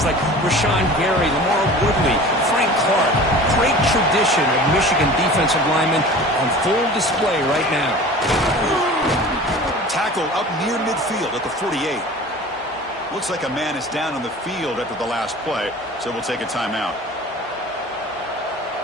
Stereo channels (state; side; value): normal; both; correlation 0.40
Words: like Rashawn Gary, Lamar Woodley, Frank Clark. Great tradition of Michigan defensive linemen on full display right now. Tackle up near midfield at the 48. Looks like a man is down on the field after the last play, so we'll take a timeout.